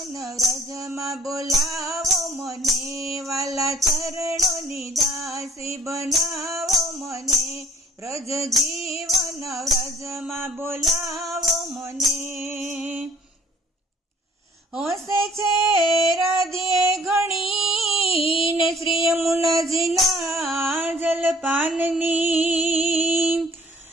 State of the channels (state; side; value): normal; both; correlation 0.56